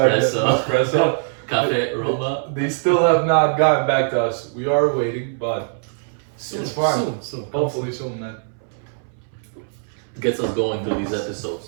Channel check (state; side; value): silent; left; 64 dB below the other